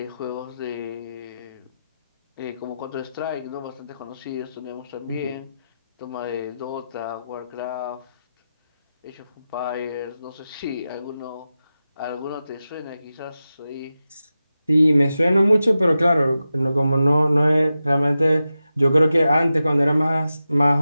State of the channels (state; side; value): inverted; both; correlation -0.92